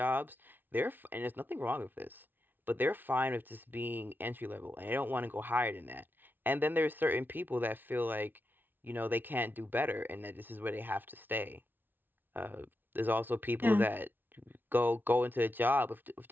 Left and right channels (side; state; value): left; late; 0.093 ms